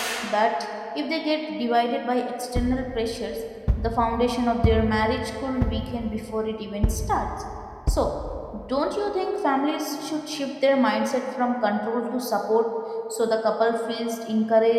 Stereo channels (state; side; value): identical; both; correlation 1.00